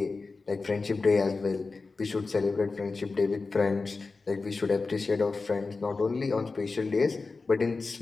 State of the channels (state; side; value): quieter; right; 4.0 dB